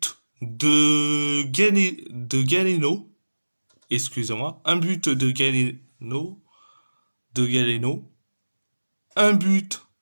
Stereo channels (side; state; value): both; inverted; correlation -1.00